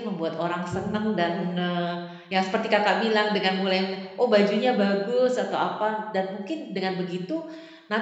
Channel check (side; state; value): both; identical; correlation 1.00